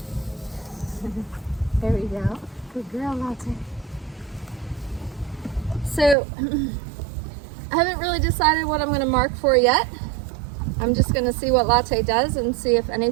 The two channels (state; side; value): drops out; left; at 6.2 s